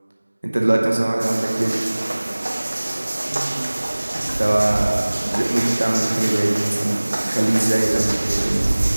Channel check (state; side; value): inverted; both; correlation -1.00